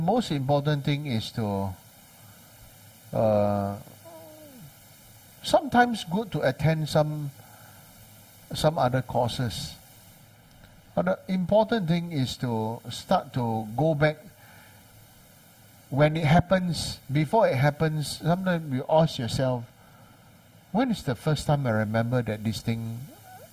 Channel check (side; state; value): both; identical; correlation 1.00